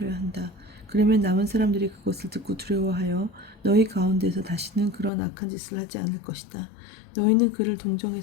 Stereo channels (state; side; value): drops out; right; at 5.1 s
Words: 한다. 그러면 남은 사람들이 그것을 듣고 두려워하여 너희 가운데서 다시는 그런 악한 짓을 하지 않을 것이다. 너희는 그를